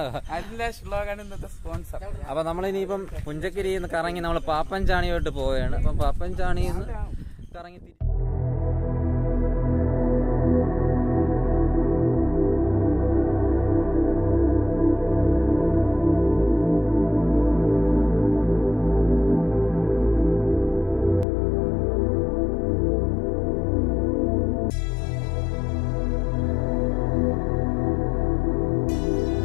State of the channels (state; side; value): drops out; right; at 21.2 s